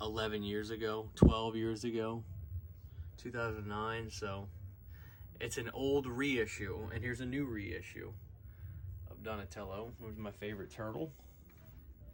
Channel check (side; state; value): both; identical; correlation 1.00